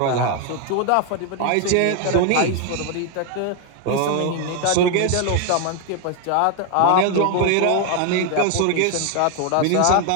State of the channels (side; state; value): both; different; correlation 0.00